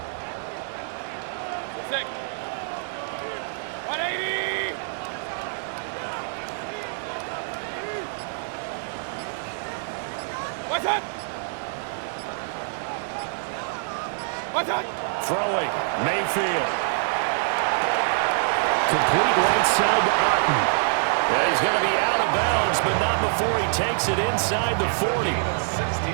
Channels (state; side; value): silent; left; digital silence